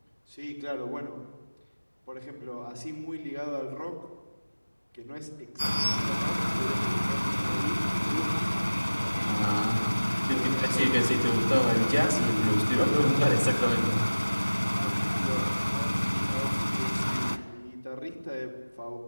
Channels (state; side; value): inverted; both; correlation -1.00